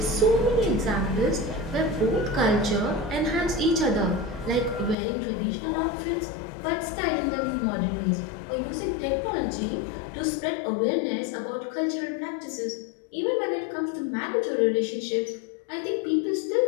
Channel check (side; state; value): right; drops out; at 5.0 s